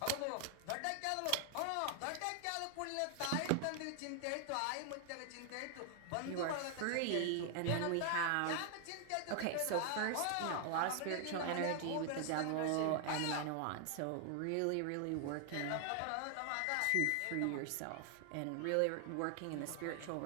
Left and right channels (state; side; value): different; both; correlation 0.00